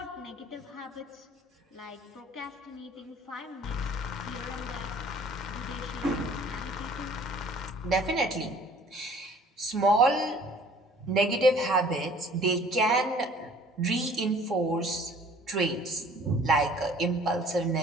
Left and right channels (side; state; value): both; normal; correlation 0.53